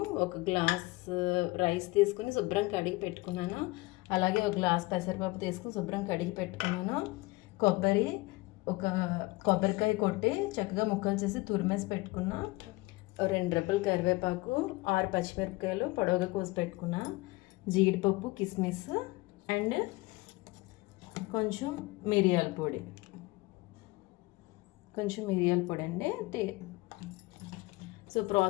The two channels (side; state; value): right; quieter; 22.2 dB